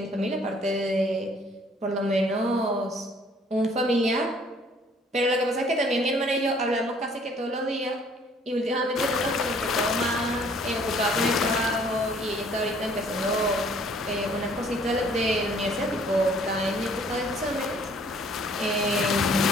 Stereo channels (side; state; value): both; normal; correlation 0.59